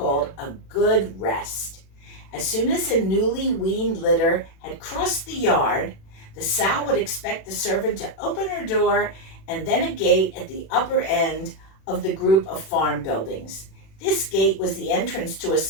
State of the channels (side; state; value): right; late; 36 ms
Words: a good rest. As soon as a newly weaned litter had crossed the yard, the sow would expect the servant to open her door and then a gate at the upper end of the group of farm buildings. This gate was the entrance to a